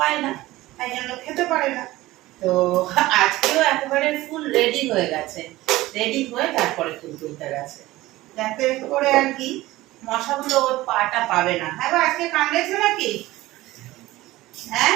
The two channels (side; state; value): left; quieter; 17.7 dB